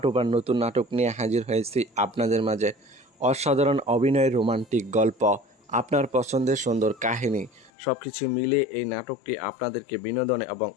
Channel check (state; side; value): drops out; right; at 7.7 s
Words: টুপার নতুন নাটক নিয়ে হাজির হয়েছি আপনাদের মাঝে। অসাধারণ অভিনয়, রোমান্টিক গল্প, আপনার পছন্দের সুন্দর কাহিনী সব কিছু মিলিয়ে এই নাটকটি আপনাদেরকে বিনোদন এবং